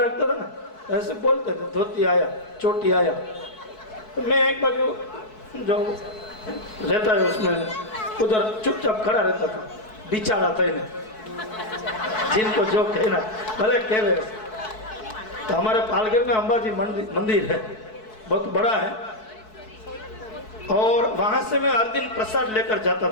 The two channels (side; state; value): right; late; 4.6 ms